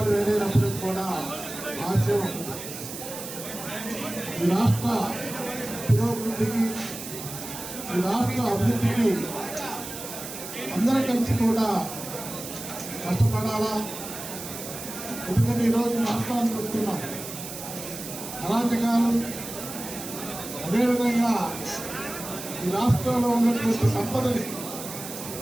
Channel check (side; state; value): right; noise; hiss, 10 dB below the sound